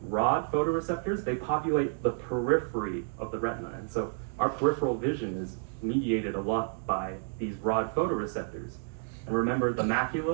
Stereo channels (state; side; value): silent; left; 58 dB below the other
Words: rod photoreceptors, they populate the periphery of the retina. And so our peripheral vision is mediated a lot by these rod photoreceptors. And remember the